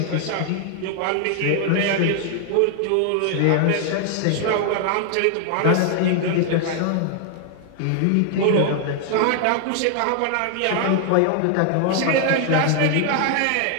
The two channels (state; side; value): different; both; correlation 0.00